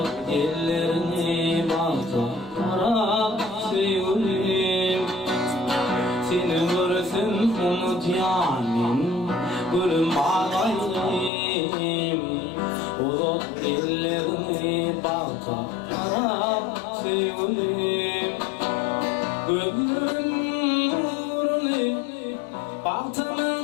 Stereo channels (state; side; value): drops out; right; at 11.3 s